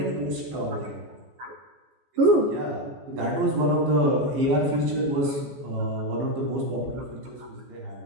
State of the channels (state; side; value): late; left; 14 ms